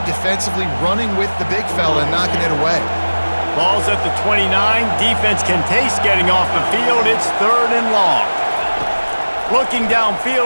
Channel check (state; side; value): inverted; both; correlation -1.00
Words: defensively running with the big fella and knocking it away. Ball's at the 29. Defense can taste getting off the field. It's 3rd and long. Looking